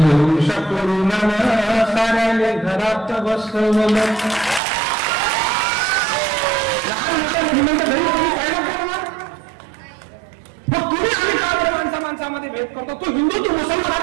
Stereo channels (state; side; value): drops out; left; at 4.6 s